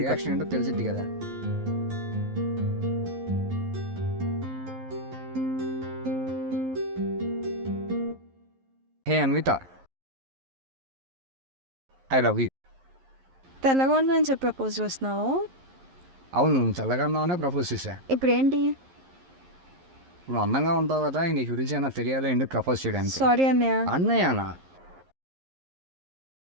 రియాక్షన్ ఏంటో తెలిసిద్ది కదా. హే అన్విత, ఐ లవ్ యూ. తెల్లగా ఉందని చెప్పి ప్రపోజ్ చేస్తున్నావు. అవును, తెల్లగా ఉన్నావనే ప్రపోజ్ చేశా. ఇప్పుడు ఏంటి? నువ్వు అందంగా ఉంటావు కదా, నీ గురించి అయినా తెలియాలి ఎందుకు ప్రపోజ్ చేయడానికి. సారీ అన్నయ్య. అన్నయ్యనా?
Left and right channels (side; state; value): left; late; 11 ms